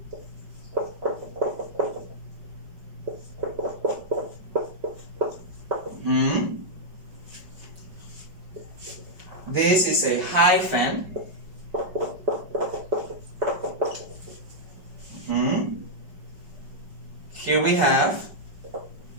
this is a hyphen, here we have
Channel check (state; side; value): late; left; 5.3 ms